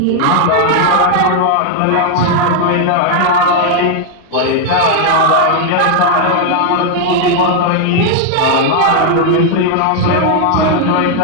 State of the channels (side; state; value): both; different; correlation 0.00